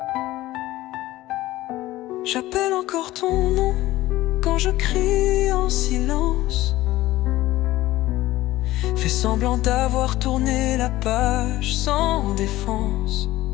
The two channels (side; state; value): right; quieter; 16.6 dB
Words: J'appelle encore ton nom quand je crie en silence. Fais semblant d'avoir tourné la page sans défense,